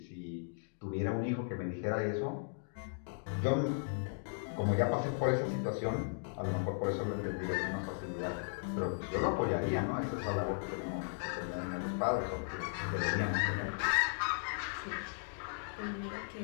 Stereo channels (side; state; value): right; silent; digital silence